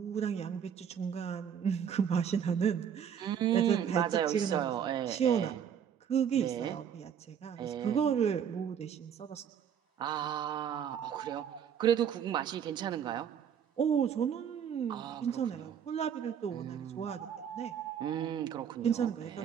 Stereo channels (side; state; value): left; quieter; 8.3 dB